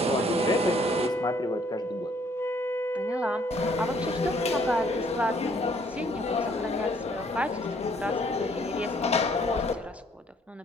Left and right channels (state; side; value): normal; both; correlation 0.63